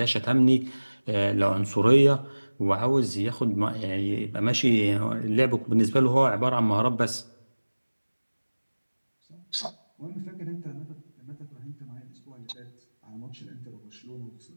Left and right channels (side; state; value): both; inverted; correlation -1.00